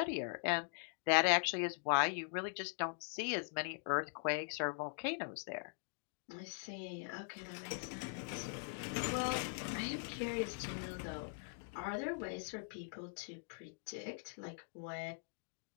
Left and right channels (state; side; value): silent; right; digital silence